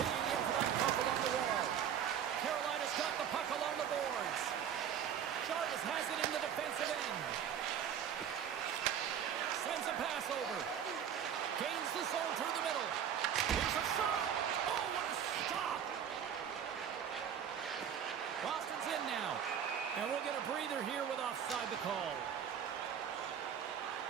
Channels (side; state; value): left; quieter; 8.7 dB